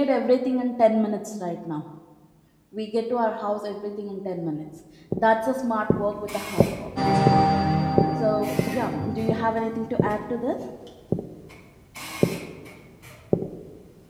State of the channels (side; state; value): both; identical; correlation 1.00